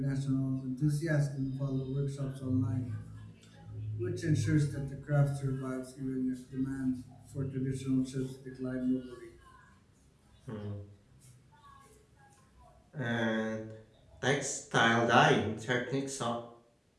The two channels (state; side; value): identical; both; correlation 1.00